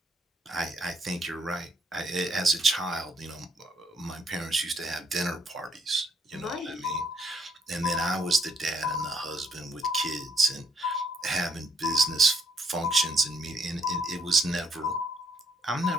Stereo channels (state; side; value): normal; both; correlation 0.71